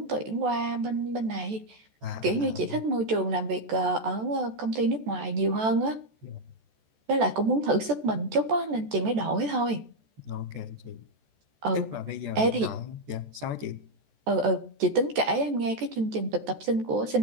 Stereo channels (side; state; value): left; late; 14 ms